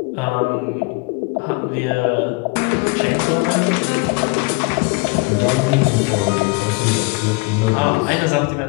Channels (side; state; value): right; quieter; 27.8 dB